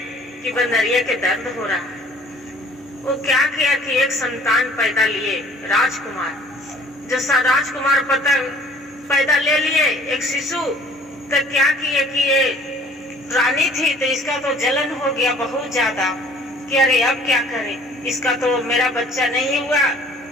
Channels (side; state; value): both; normal; correlation 0.53